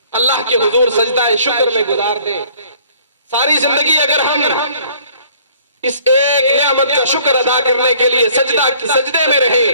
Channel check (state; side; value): inverted; both; correlation -0.56